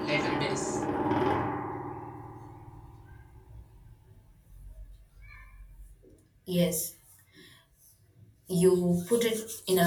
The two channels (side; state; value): both; identical; correlation 1.00